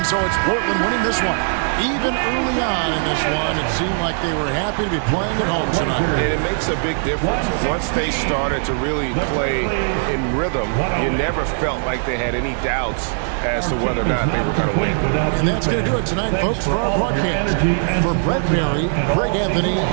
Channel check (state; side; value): silent; left; digital silence